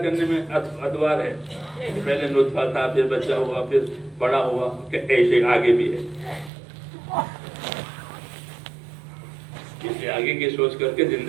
میں ادوار ہے، پہلے نطفہ تھا، پھر بچہ ہوا، پھر بڑا ہوا، کہ ایسے آگے بھی ہے. اس لیے آگے کی سوچ کر کے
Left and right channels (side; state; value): left; drops out; at 6.5 s